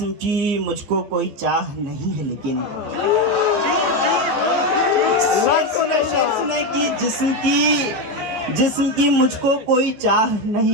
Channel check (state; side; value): late; left; 14 ms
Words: की मुझको कोई चाह नहीं है लेकिन, सुने कि जिस्म की मुझको कोई चाह